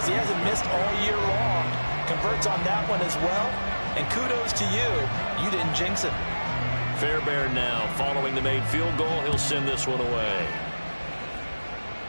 he hasn't missed all year long. Converts on that one as well. And kudos to you. You didn't jinx it. Fairbairn now following the made field goal. He'll send this one away.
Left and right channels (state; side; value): inverted; both; correlation -1.00